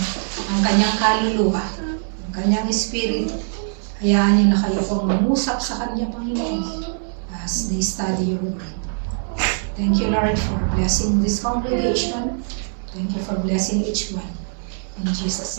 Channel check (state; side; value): silent; left; digital silence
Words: ang kanyang kaluluwa, ang kanyang espiritu, hayaan niyo na kayo pong mangusap sa kanya, Panginoon, as they study your word. Thank you, Lord, for blessing this congregation. Thank you for blessing each one. In Jesus'